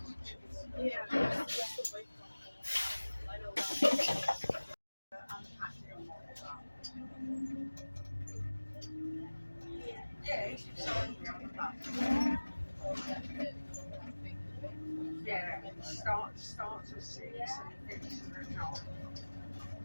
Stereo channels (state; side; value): inverted; both; correlation -1.00